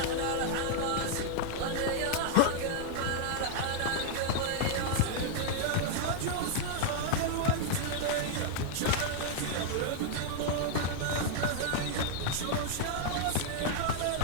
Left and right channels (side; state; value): both; different; correlation 0.00